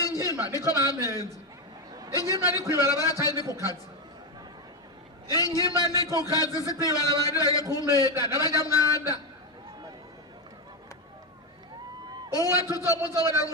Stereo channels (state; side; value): normal; both; correlation 0.09